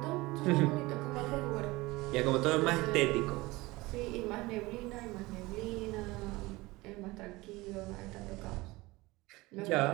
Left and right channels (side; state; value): left; quieter; 21.3 dB